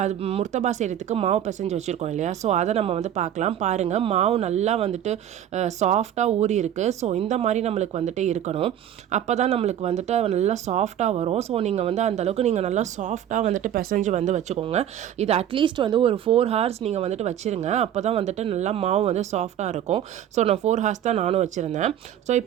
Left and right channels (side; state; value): left; quieter; 10.6 dB